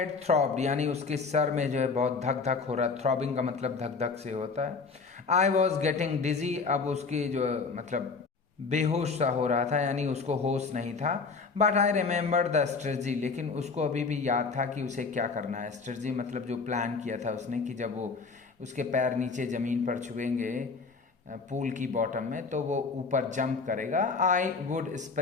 थ्रॉब्ड यानी उसके सर में जो है बहुत धक धक हो रहा है। थ्रॉबिंग का मतलब धक धक से होता है। आई वॉज गेटिंग डिजी, अब उसकी जो मतलब बेहोश सा हो रहा था यानी उसको होश नहीं था। But I remember the strategy, लेकिन उसको अभी भी याद था कि उसे क्या करना है। स्ट्रेटजी मतलब जो प्लान किया था उसने कि जब वो उसके पैर नीचे ज़मीन पर छुएंगे पूल की बॉटम में तो वो ऊपर जंप करेगा। आई वुड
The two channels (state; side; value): quieter; right; 4.7 dB